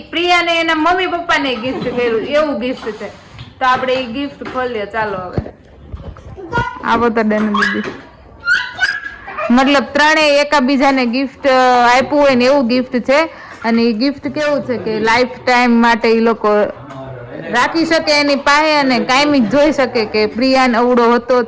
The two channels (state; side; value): identical; both; correlation 1.00